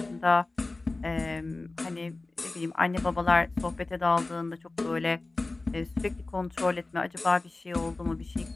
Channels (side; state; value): right; quieter; 3.2 dB